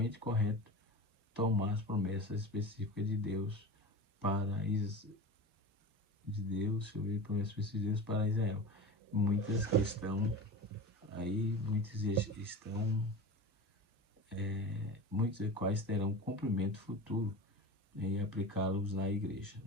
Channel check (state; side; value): normal; both; correlation 0.30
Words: correto tomar as promessas específicas de Deus promessas específicas de Deus para Israel. Muitos dos quais terão cumprimento futuro e aplicá-los na igreja,